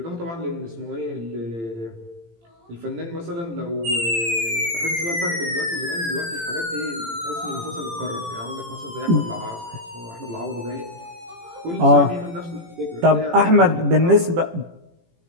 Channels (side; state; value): left; late; 18 ms